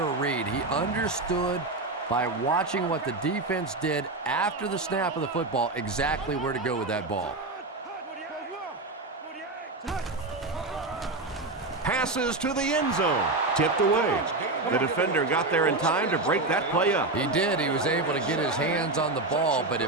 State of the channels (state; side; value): quieter; left; 3.2 dB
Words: read. He understood by watching what the defense did after the snap of the football exactly where to go with that ball. Passes to the end zone. Tipped away. The defender got there in time to break that play up. He did. He was able to get his hands on the ball, but